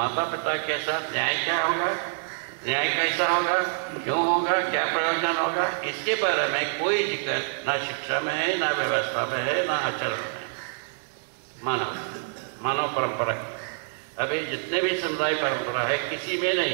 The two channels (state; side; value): silent; left; digital silence